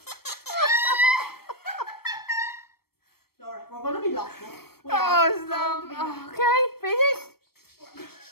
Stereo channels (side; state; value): right; late; 0.95 ms